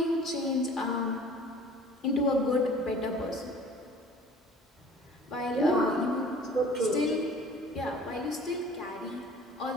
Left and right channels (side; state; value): both; normal; correlation 0.48